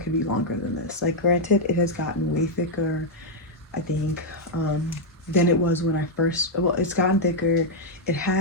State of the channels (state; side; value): normal; both; correlation -0.02